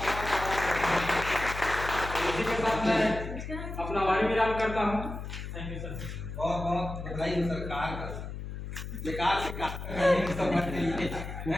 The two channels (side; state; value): left; noise; hum, 8 dB below the sound